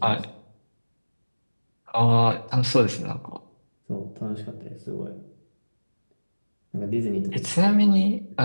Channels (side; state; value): both; inverted; correlation -1.00